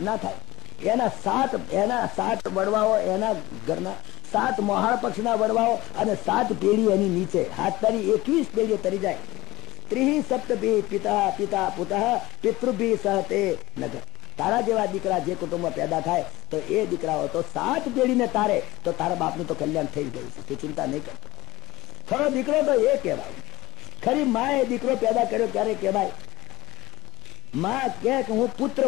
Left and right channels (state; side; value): quieter; right; 19.1 dB